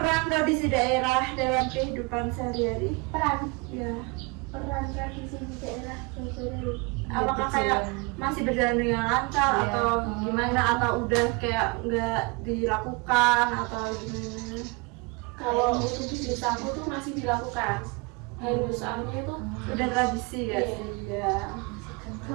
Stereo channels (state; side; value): quieter; left; 28.6 dB